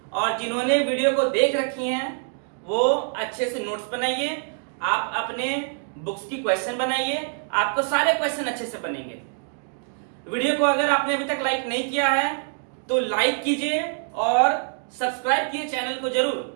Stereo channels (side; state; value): left; silent; digital silence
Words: और जिन्होंने वीडियो को देख रखी हैं वो अच्छे से नोट्स बनाइए, आप अपने बुक्स की क्वेश्चन बनाइए, आपको सारे क्वेश्चन अच्छे से बनेंगे। वीडियो को अगर आपने अभी तक लाइक नहीं किया है तो लाइक कीजिए और सब्सक्राइब कीजिए चैनल को